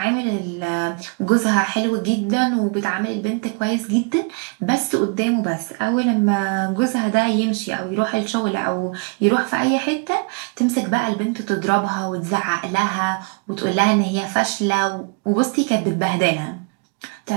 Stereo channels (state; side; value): quieter; left; 34.3 dB